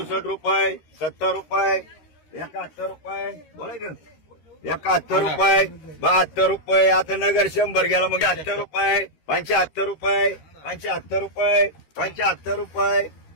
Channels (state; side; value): late; right; 13 ms